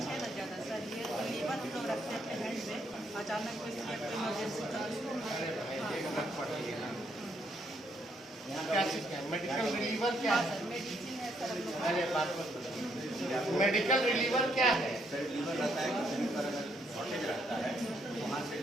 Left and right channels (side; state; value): both; normal; correlation 0.73